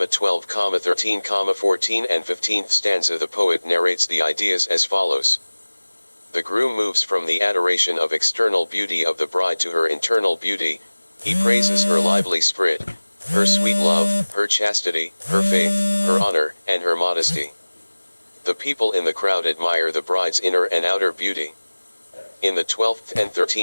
13, 14 and 15th stanza the poet narrates the ideas as follows. The groom moves from the adoration of external beauty of the bride to her internal beauty. He praises her lively spirit, her sweet love, her chastity, her faith, her honor, and her modesty. The people in the crowd admire the bride's inner and outer beauty. In the 12th and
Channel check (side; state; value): both; inverted; correlation -1.00